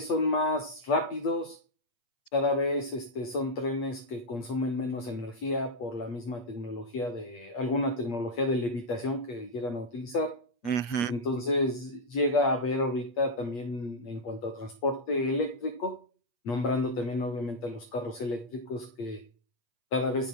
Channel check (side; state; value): right; late; 8.4 ms